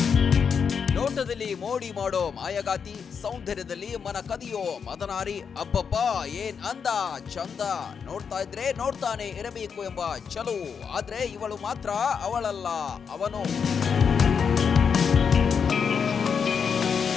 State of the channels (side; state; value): right; quieter; 6.5 dB